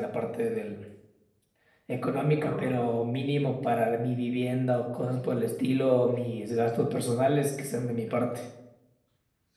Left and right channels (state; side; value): identical; both; correlation 1.00